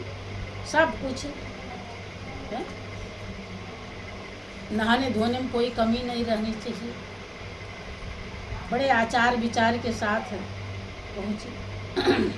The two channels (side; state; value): both; identical; correlation 1.00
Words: सब कुछ है। नहाने धोने में कोई कमी नहीं रहनी चाहिए। बड़े आचार विचार के साथ पहुँचे।